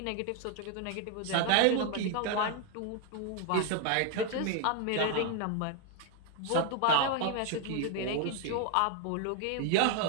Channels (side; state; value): both; different; correlation 0.00